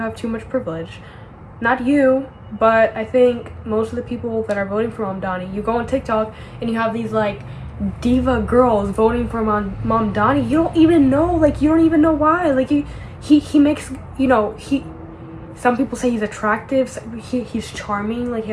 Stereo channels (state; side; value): identical; both; correlation 1.00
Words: too much privilege. Not you, but I think most of the people that are voting for Mamdani, you go on TikTok and you have these like diva girls voting for Mamdani. You don't even know why. Like he makes, some people say he's attractive. He's charming. Like he